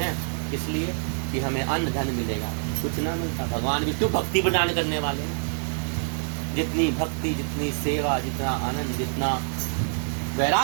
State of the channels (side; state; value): left; silent; 61 dB below the other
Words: इसलिए कि हमें अन्न धन मिलेगा, कुछ ना मिलता। भगवान विष्णु भक्ति प्रदान करने वाले हैं। जितनी भक्ति, जितनी सेवा, जितना आनंद, जितना